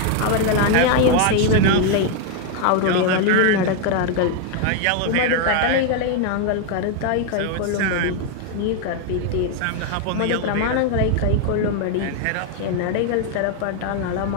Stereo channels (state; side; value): different; both; correlation 0.00